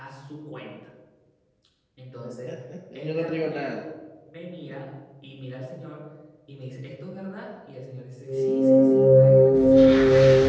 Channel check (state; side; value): identical; both; correlation 1.00